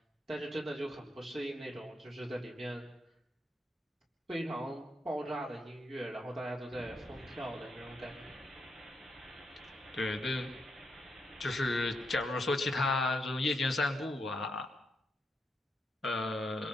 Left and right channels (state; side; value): normal; both; correlation 0.81